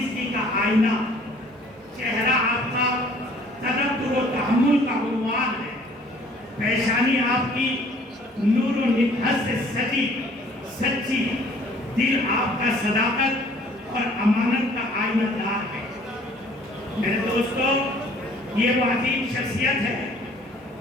का आईना, चेहरा आपका तदब्बुर व तहम्मुल का उन्वान है, पेशानी आपकी नूर व नितहत से सच्ची, दिल आपका सदाकत और अमानत का आईनादार है। मेरे दोस्तों, ये वो अजीम शख्सियत है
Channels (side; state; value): both; normal; correlation 0.56